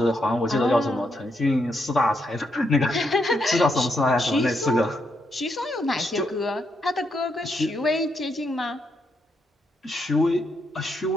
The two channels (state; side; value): normal; both; correlation 0.79